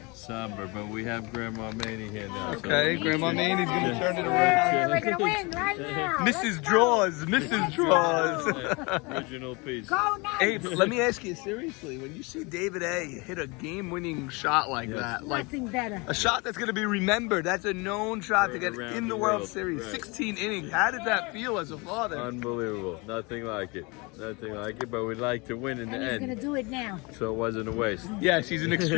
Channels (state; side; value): quieter; right; 27.6 dB